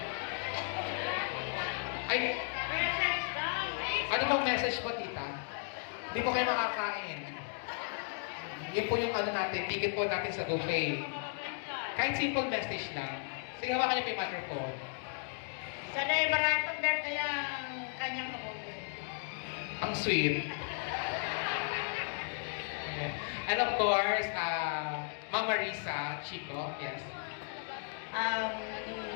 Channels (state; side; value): silent; right; 54 dB below the other